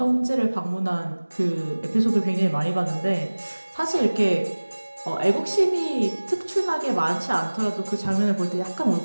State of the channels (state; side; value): inverted; both; correlation -1.00